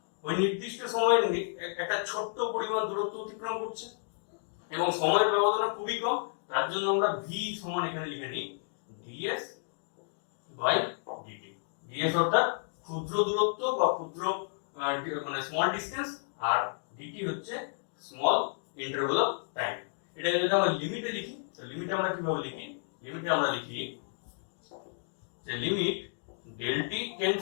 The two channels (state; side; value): silent; right; 57 dB below the other